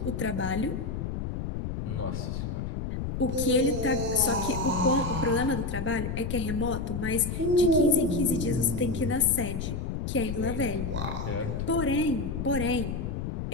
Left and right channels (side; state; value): left; noise; rumble, 4 dB below the sound